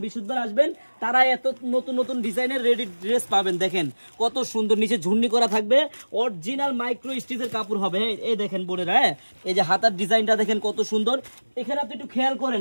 বৃহস্পতিবার আসবেন তারা এত নতুন নতুন ডিজাইনের রেডি ড্রেস পাবেন। দেখেন কত সুন্দর, নিচে ঝুন্নি করা থাকবে, অরিজিনাল মাইক্রো স্টিচের কাপড় হবে। এই দেখেন বোনেরা, এই যে হাতার ডিজাইনটা দেখেন কত সুন্দর। এখানে আপনি একটু খেয়াল করেন,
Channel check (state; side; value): inverted; both; correlation -1.00